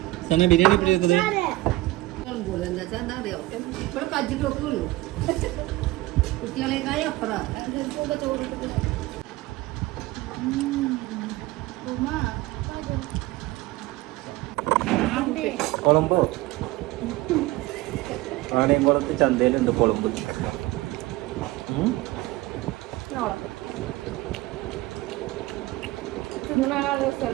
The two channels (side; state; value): left; quieter; 18.8 dB